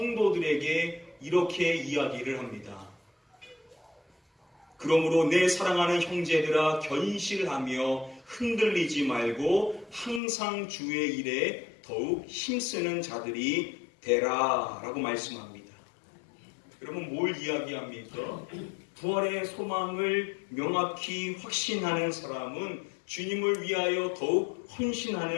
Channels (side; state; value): right; drops out; at 10.2 s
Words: 이렇게 이야기를 합니다. 그러므로 내 사랑하는 형제들아 견실하며 흔들리지 말고 항상 주의 일에 더욱 힘쓰는 자들이 되라 라고 말씀합니다. 여러분 뭘 이야기합니까? 부활의 소망을 명확히 확신하는 사람은 주님을 위하여 더욱